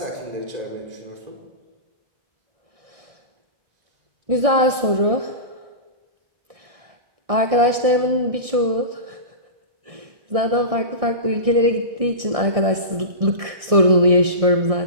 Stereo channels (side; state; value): left; late; 1.6 ms